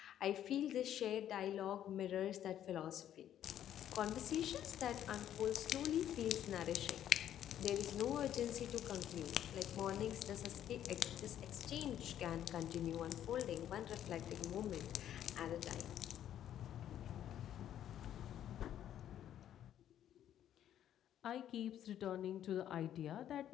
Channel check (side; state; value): right; quieter; 10.9 dB